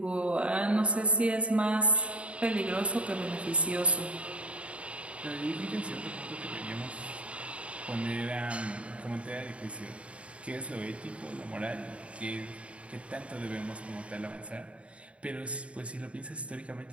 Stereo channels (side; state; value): left; late; 0.062 ms